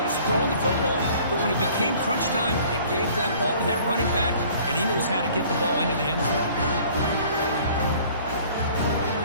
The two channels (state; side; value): inverted; both; correlation -0.52